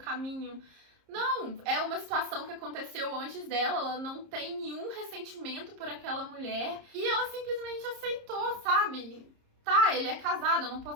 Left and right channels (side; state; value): left; late; 30 ms